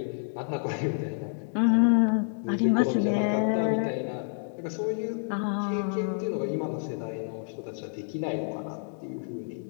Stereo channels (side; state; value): right; silent; digital silence